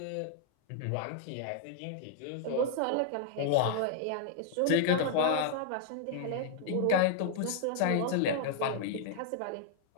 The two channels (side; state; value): both; different; correlation -0.01